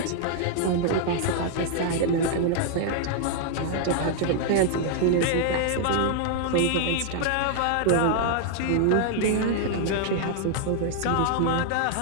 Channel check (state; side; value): different; both; correlation -0.01